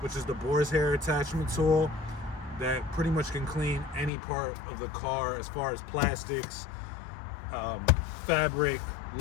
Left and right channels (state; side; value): drops out; right; at 4.1 s